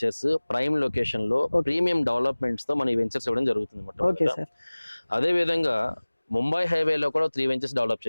ప్రైమ్ లొకేషన్ లో ప్రీమియం డెవలప్మెంట్స్ తో మన ఈ వెంచర్స్ ఇవ్వడం జరుగుతుంది. అదే విధంగా ముంబై హైవేలో కూడా 3 వెంచర్స్ డెవలప్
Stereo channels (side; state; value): both; inverted; correlation -1.00